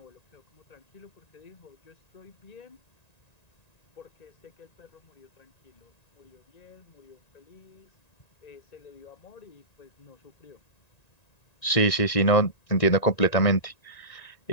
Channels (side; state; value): right; late; 1.9 ms